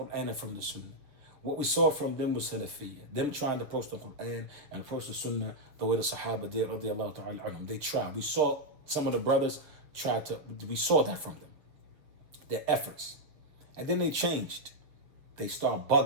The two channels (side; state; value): left; late; 7.3 ms